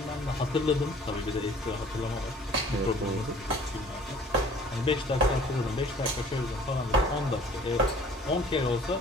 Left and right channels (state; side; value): normal; both; correlation 0.52